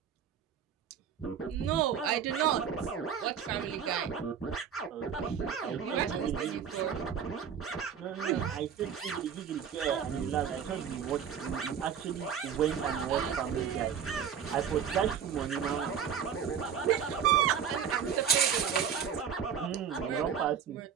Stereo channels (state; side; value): quieter; left; 7.9 dB